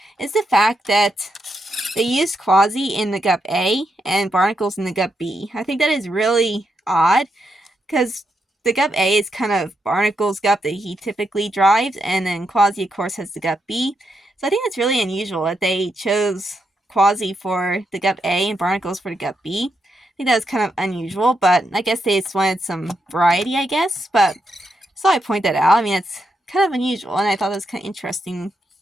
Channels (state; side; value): normal; both; correlation 0.82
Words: is the fact that they used Quasi in the Gup A and Barnacles in the Gup B. I think that is really odd because the Gup A is kind of Barnacles' Gup that he typically drives, and then Quasi, of course, has the Gup B. So I think it's really unusual that they chose Quasi for the Gup A and Barnacles for the Gup B. I think that was kind of unusual, but I guess they just wanted some variety, I guess. But so I point that out. I mean, it's kind of unusual, and I thought it was kind of interesting,